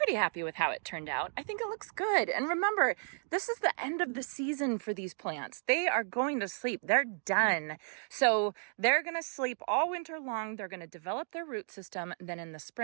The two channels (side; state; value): left; silent; 55 dB below the other